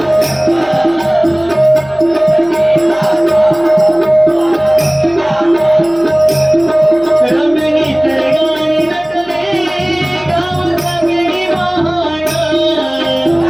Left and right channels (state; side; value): noise; left; hum, 24 dB below the sound